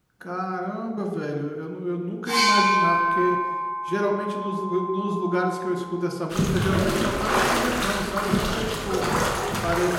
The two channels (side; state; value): both; identical; correlation 1.00